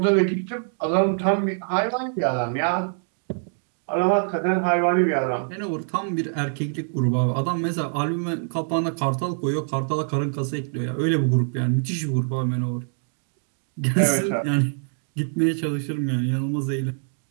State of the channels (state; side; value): silent; left; digital silence